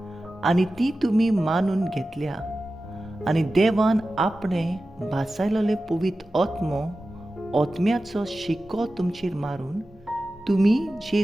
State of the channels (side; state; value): both; normal; correlation 0.94